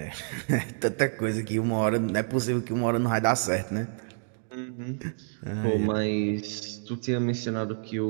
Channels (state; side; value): silent; left; digital silence